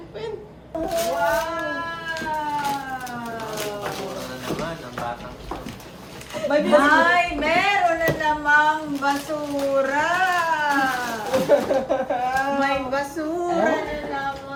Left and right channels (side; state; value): both; identical; correlation 1.00